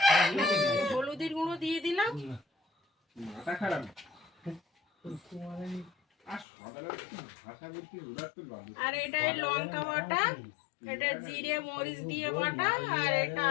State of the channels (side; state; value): right; drops out; at 6.5 s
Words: হলুদের গুঁড়ো দিয়ে দিলাম, মাথা খারাপ। আর সকালে ভাষা বলতে ওরা তো আর এটা লঙ্কা বাটা, এটা জিরে মরিচ দিয়ে বাটা, আর এটা